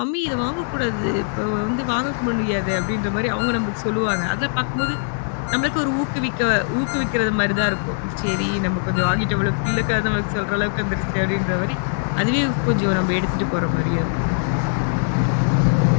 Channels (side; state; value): right; silent; 65 dB below the other